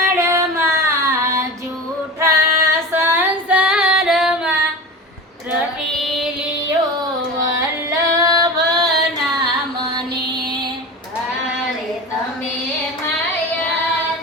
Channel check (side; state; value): both; normal; correlation 0.30